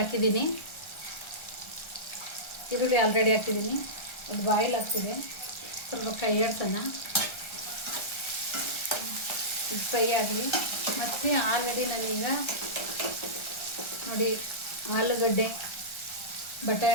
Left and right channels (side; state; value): right; late; 1.3 ms